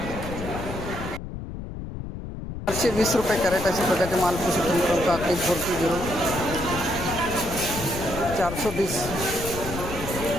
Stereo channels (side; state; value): left; noise; rumble, 8 dB below the sound